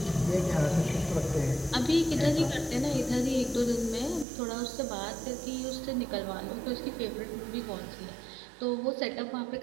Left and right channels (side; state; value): left; drops out; at 4.2 s